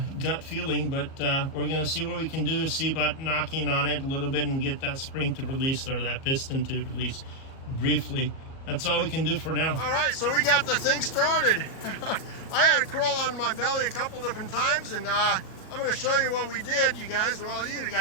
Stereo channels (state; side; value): late; right; 37 ms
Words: gut feeling, but we're gonna see what we can do, is see about knocking on it a little bit and get that spring to release, or that piston to release briefly. That's all we can do for now. All right, so we got the thing started. I had to crawl on my belly a couple different times, and I'm gonna show you what we did, you guys. Well, you